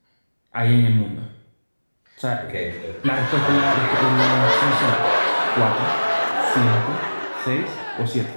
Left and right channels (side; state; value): both; inverted; correlation -1.00